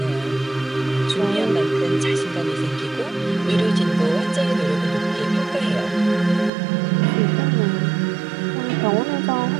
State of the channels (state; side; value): drops out; left; at 6.5 s